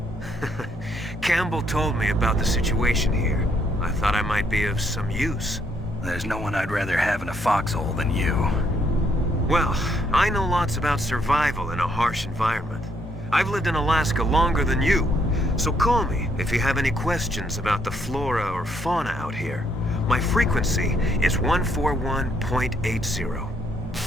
Campbell told me about the situation here. I thought I might be of some use. There's no one I'd rather have in a foxhole than you. Well, I know lots about survival in a harsh environment. I've lived in Alaska longer than you, so call me if you have any questions about the flora or fauna out here. My frequency is 141.80.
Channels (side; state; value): both; normal; correlation 0.71